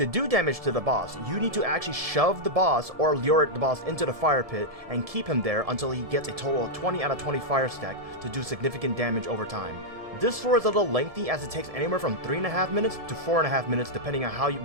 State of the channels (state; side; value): late; left; 1.7 ms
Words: do damage to the boss, you need to actually shove the boss or lure the boss into the fire pit and keep him there until he gets a total of 20 out of 20 fire stack to do significant damage over time. This floor is a little lengthy as it takes anywhere from 3.5 minutes to 4.5 minutes depending on how